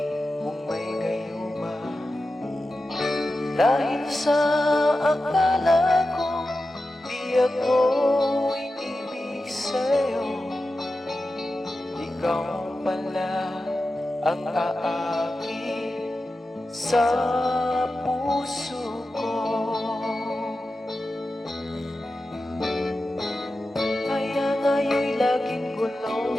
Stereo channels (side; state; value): both; normal; correlation 0.92